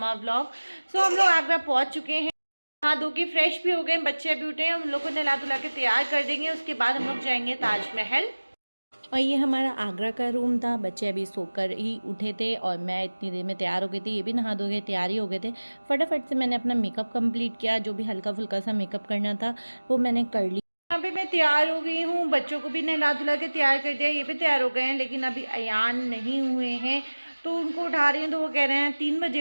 vlog. So हम लोग आगरा पहुंच चुके हैं। नहा धो के फ्रेश भी हो गए, बच्चे अभी उठे हैं। हम लोग को नहला धुला के तैयार कर देंगे, उसके बाद हम लोग जाएंगे ताजमहल। और ये हमारा आगरा का रूम था। बच्चे अभी सोकर ही उठे थे और मैं इतनी देर में तैयार हो गई थी। ये भी नहा धो के तैयार ही हो गए थे। फटाफट से मैंने अपना मेकअप कंप्लीट किया, जो भी हल्का फुल्का सा मेकअप करना था वो मैंने कर लिया। यहाँ पे मैं तैयार हो गई हूँ, बच्चों को भी नहला धुला के तैयार कर दिया। ये भी तैयार हो गए हैं, लेकिन अभी अयान नहीं हुए हैं तो उनको उठा रही हूँ। तो वो कह रहे हैं 3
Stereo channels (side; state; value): both; inverted; correlation -1.00